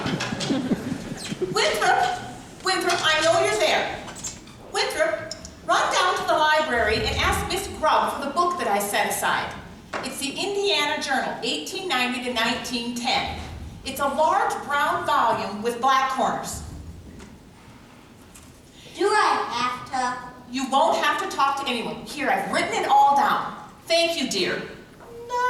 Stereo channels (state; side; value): identical; both; correlation 1.00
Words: Winthrop, I know you're there. Winthrop, run down to the library and ask Miss Grubb for the book that I set aside. It's the Indiana Journal, 1890 to 1910. It's a large brown volume with black corners. Do I have to? You won't have to talk to anyone. Here, I've written it all down. Thank you, dear.